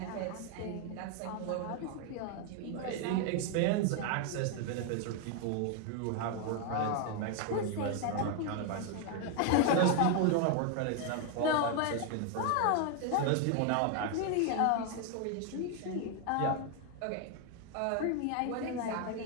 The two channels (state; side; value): different; both; correlation 0.01